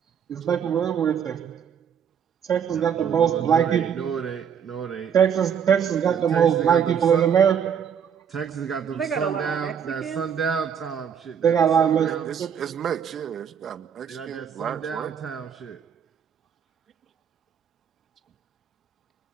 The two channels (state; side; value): quieter; left; 7.8 dB